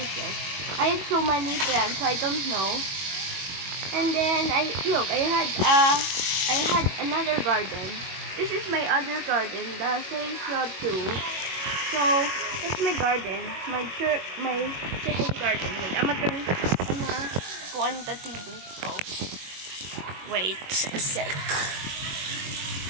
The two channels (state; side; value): late; left; 22 ms